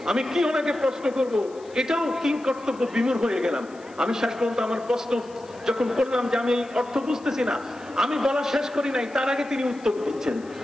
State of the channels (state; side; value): noise; left; hiss, 26 dB below the sound